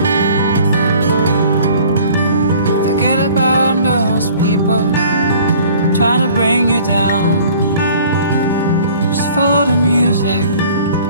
Forget about those people trying to bring you down. Just follow the music.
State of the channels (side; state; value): both; inverted; correlation -0.51